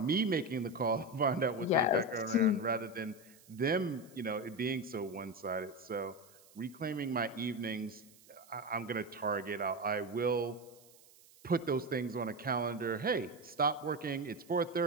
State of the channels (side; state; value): right; noise; hiss, 25 dB below the sound